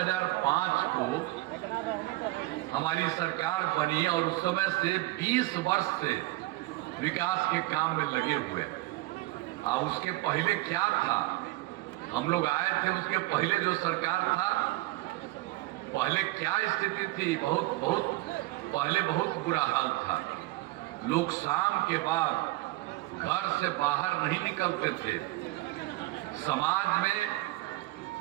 को हमारी सरकार बनी और उस समय से 20 वर्ष से विकास के काम में लगे हुए। अब उसके पहले क्या था, हम लोग आए थे उसके पहले जो सरकार था पहले क्या स्थिति थी, बहुत पहले बहुत बुरा हाल था। लोग शाम के बाद घर से बाहर नहीं निकलते थे, समाज में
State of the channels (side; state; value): left; quieter; 19.2 dB